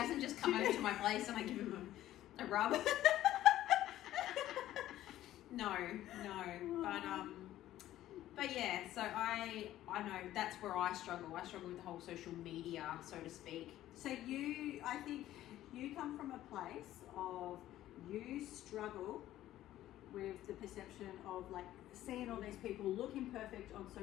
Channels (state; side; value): quieter; right; 13.7 dB